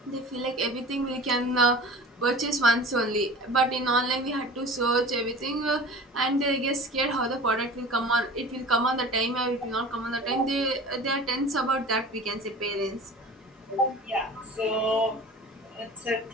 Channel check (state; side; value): normal; both; correlation 0.40